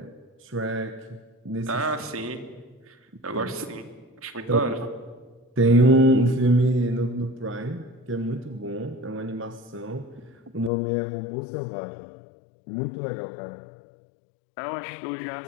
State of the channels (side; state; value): right; drops out; at 10.7 s